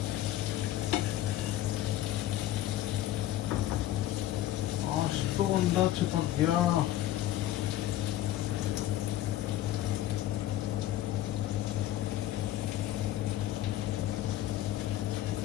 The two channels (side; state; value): right; quieter; 13.7 dB